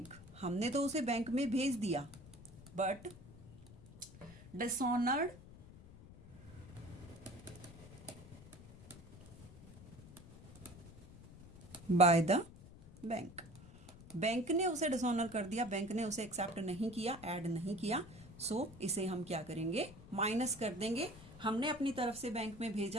हमने तो उसे बैंक में भेज दिया, but dishonoured bye the bank. Bank ने उसे डिसऑनर कर दिया, बैंक ने उसे एक्सेप्ट नहीं किया, ऐड नहीं किया, सो इसे हम क्या करेंगे, माइनस कर देंगे। हमने अपनी तरफ से बैंक में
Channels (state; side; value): noise; left; rumble, 18 dB below the sound